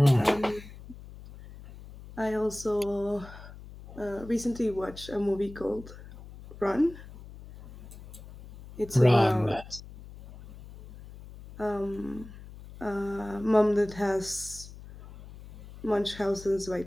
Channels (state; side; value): noise; left; hum, 17 dB below the sound